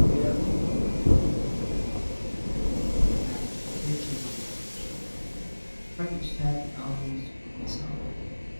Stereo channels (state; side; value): inverted; both; correlation -1.00